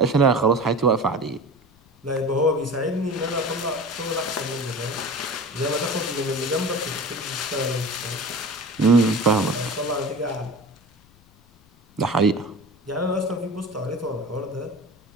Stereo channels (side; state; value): left; noise; rumble, 29 dB below the sound